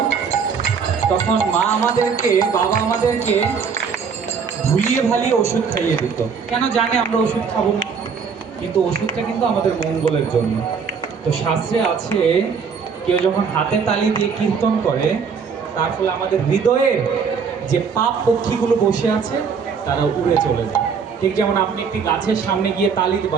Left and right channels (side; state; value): left; quieter; 6.0 dB